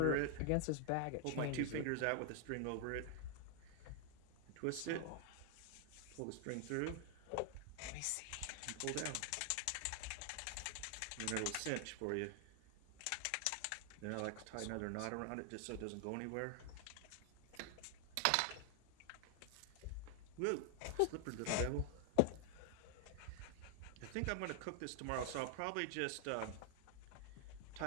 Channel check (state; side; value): different; both; correlation 0.00